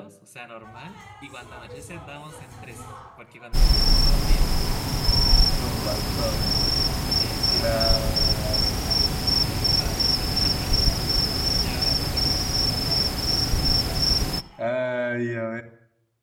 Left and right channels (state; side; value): identical; both; correlation 1.00